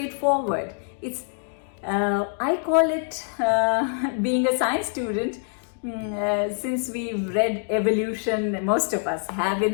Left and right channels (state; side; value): silent; right; 62 dB below the other